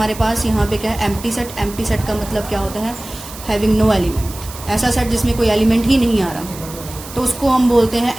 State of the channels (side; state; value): right; noise; hiss, 15 dB below the sound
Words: पास यहाँ पे क्या है, एम्प्टी सेट। एम्प्टी सेट का मतलब क्या होता है, हैविंग नो एलिमेंट। ऐसा सेट जिसमें कोई एलिमेंट ही नहीं आ रहा, तो उसको हम बोलते हैं